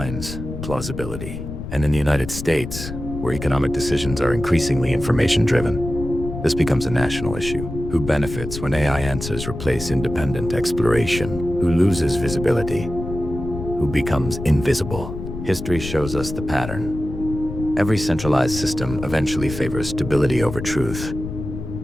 plausibility. And in the United States, where economic decisions are increasingly information-driven, this becomes a national issue. Who benefits when AI answers replace independent exploration? Who loses visibility? Who becomes invisible? History shows us the pattern. Every centralized system eventually favors stability over truth,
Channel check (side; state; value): left; noise; rumble, 8 dB below the sound